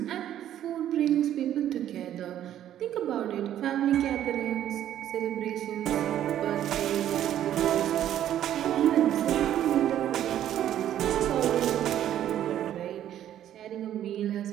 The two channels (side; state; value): left; quieter; 11.4 dB